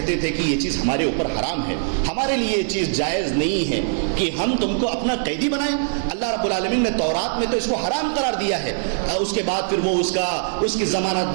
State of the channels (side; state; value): left; silent; digital silence